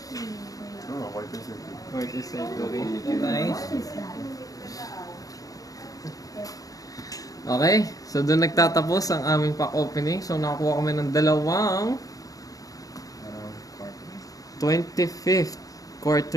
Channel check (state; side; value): late; right; 0.17 ms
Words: Oo, quarter century. Quarter century. so guys, What is that? Okay, so doon nagtatapos ang aming pack opening. So nakakuha kami ng dalawang 25th